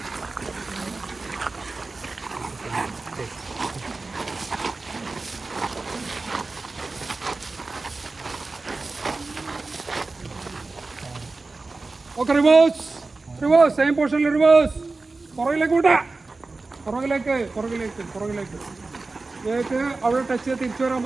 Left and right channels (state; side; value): quieter; left; 3.6 dB